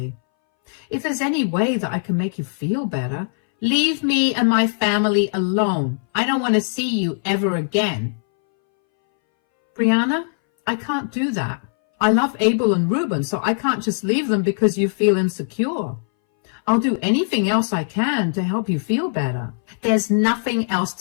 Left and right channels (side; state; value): right; silent; 62 dB below the other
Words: If there's any way that I can make you feel better, leave me and my family alone. I don't want to see you ever again. Brianna, I can't do that. I love Abel and Ruben, so I can't just leave them because you feel insecure. I'll do anything else I can to help you feel better. There's nothing else